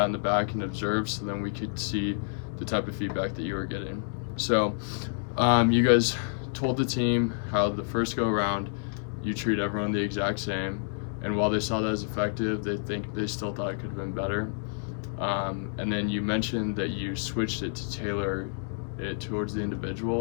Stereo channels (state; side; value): silent; right; digital silence